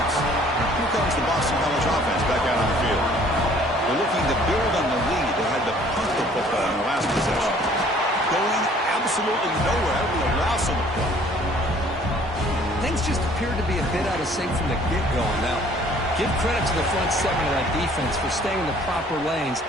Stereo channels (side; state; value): both; normal; correlation 0.56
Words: Here comes the Boston College offense back out on the field. They're looking to build on the lead. They had to punt the football in the last possession. Going absolutely nowhere. With a loss on the play. Things just appeared to be a bit out of sync from the get-go now. Give credit to the front seven of that defense for staying in the proper lanes